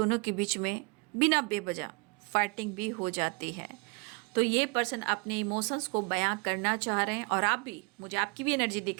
के बीच में बिना बेवजह फाइटिंग भी हो जाती है। तो ये पर्सन अपने इमोशंस को बयां करना चाह रहे हैं और आप भी, मुझे आपकी भी एनर्जी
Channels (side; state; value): left; quieter; 30.9 dB